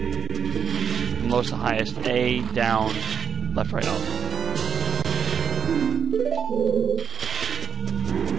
from lowest to highest. A, down, left, right, up.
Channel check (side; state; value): left; quieter; 6.9 dB